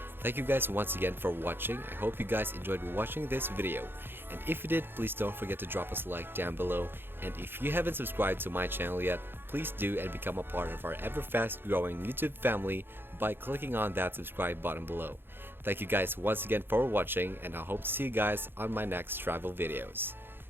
Thank you guys once again for watching. I hope you guys enjoyed watching this video. And if you did, please don't forget to drop us a like down below. And if you haven't subscribed to my channel yet, please do and become a part of our ever fast growing YouTube family by clicking on that subscribe button below. Thank you guys once again for watching, and I hope to see you guys on my next travel videos.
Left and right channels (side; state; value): left; late; 0.10 ms